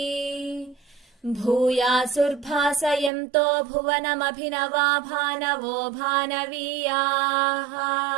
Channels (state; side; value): drops out; left; at 3.1 s